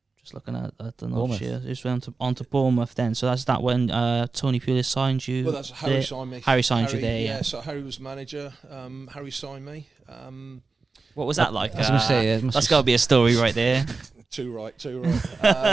just looking at the notes here, just went on to Bournemouth then. So that's that when Tony Pulis signed you. Well, that's Harry signed me. Harry signed you there. Yeah. So Harry was manager. Harry signed me. What was that like? I was going to say, that's got to be a story right there. Too right. So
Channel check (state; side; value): quieter; left; 4.1 dB